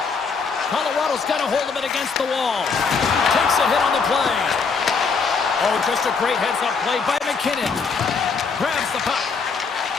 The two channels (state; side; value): quieter; right; 5.1 dB